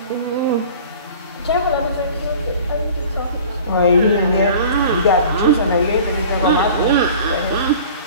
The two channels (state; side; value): inverted; both; correlation -0.44